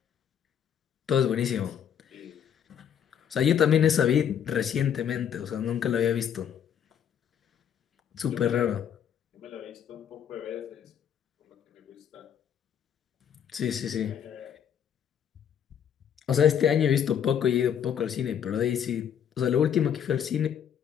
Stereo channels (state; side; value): quieter; right; 8.7 dB